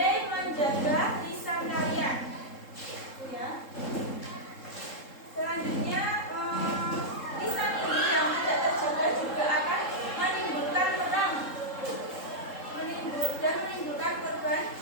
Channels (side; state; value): right; late; 3.7 ms